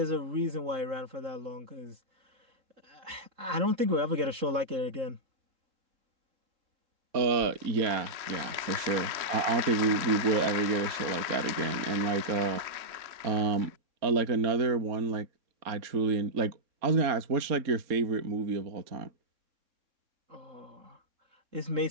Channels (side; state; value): left; late; 3.6 ms